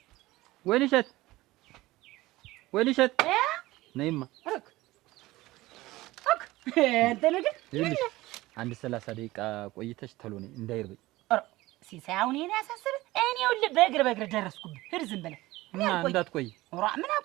ወይንሸት ነይማ አንተ ነገር አንድ 30 ደቂቃ ቆይተሽ ተሎ ነይ እንዳይርበኝ። ሲሳይ አሁን እኔ ያሳስብ እኔ ይኸውልህ በእግር ደረስኩብህ። ሂድ ዝም ብለህ እና እንዳትቆይ። ምን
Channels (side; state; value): left; quieter; 18.5 dB